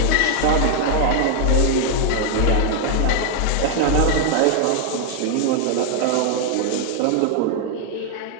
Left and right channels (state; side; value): different; both; correlation 0.00